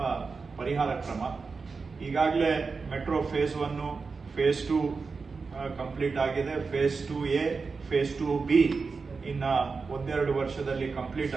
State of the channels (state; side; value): quieter; left; 4.6 dB